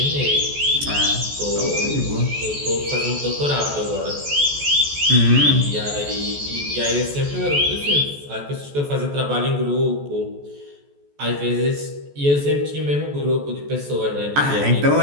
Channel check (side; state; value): left; late; 14 ms